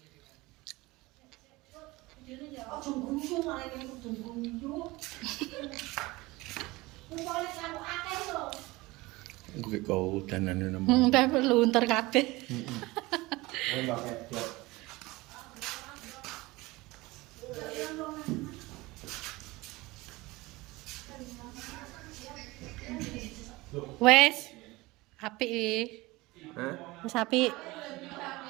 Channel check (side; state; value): left; quieter; 21.2 dB